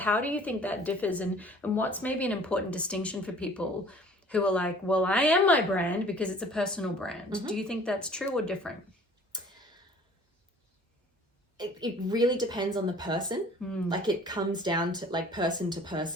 do you think that differs, and what's maybe an important distinction for people who are like, well, I am my brand because it's a personal brand. Do you think that's true or different? It really depends on the person. Like, it comes down to like person to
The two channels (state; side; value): normal; both; correlation 0.51